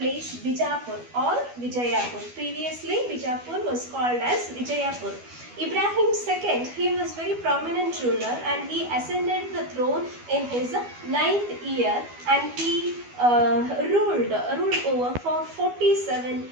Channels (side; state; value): left; late; 12 ms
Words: Bijapur or Vijayapur. Previously, Bijapur was called as Vijayapur. Ibrahim II, he was very prominent ruler and he ascended the throne in his 9th year and he ruled over for 47